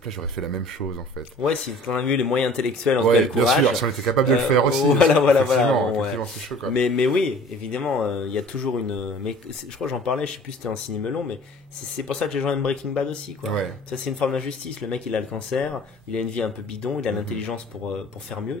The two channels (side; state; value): both; normal; correlation 0.48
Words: j'aurais fait la même chose, en fait. Ouais, si on a vu les moyens intellectuels, en tout cas le courage. Bien sûr, si on était capable de le faire aussi. Voilà. C'est chaud, quoi. Mais oui, évidemment, il y a toujours mais je crois que j'en parlais, je sais plus si c'était un ciné melon, mais c'est pour ça que les gens aiment Breaking Bad aussi, quoi. Ça, c'est une forme d'injustice. Le mec, il a le cancer, il a une vie un peu bidon, il a l'intelligence pour faire mieux,